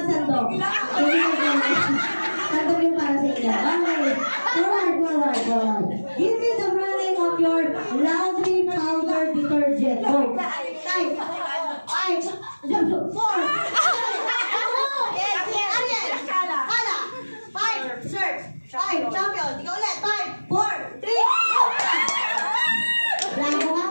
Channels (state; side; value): inverted; both; correlation -1.00